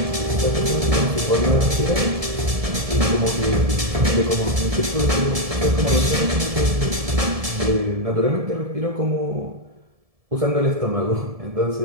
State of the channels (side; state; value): left; late; 1.7 ms